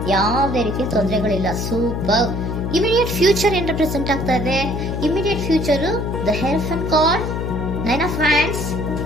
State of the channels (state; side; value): noise; left; hum, 3 dB below the sound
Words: ಯಾವುದೇ ರೀತಿಯ ತೊಂದರೆಗಳಿಲ್ಲ. ಸೂಪರ್. ಇಮಿಡಿಯೇಟ್ ಫ್ಯೂಚರ್ ಏನ್ ರೆಪ್ರೆಸೆಂಟ್ ಆಗ್ತಾ ಇದೆ? Immediate future the hierophant card, 9 of wands